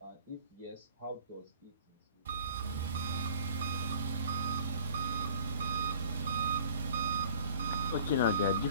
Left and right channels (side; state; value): both; inverted; correlation -0.49